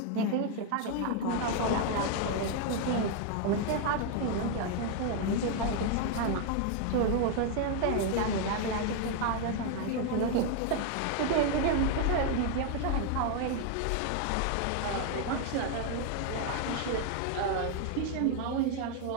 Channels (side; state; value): both; different; correlation 0.00